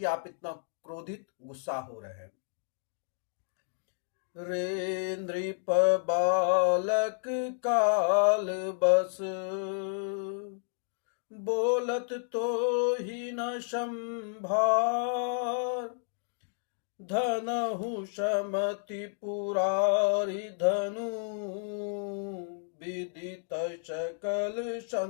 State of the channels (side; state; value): right; silent; digital silence